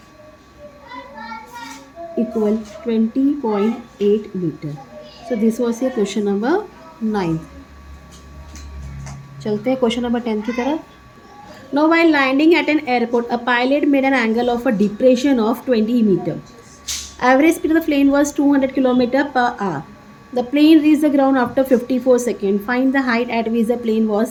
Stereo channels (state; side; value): identical; both; correlation 1.00